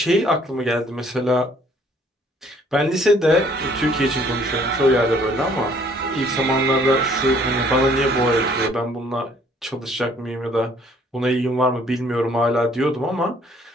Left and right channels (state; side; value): normal; both; correlation 0.61